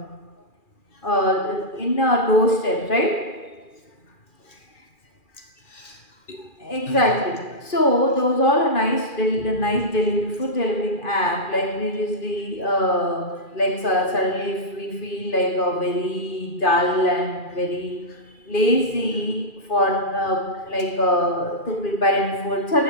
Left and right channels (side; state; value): right; late; 2.4 ms